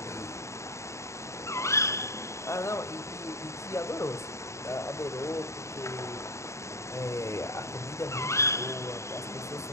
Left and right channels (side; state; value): right; late; 0.14 ms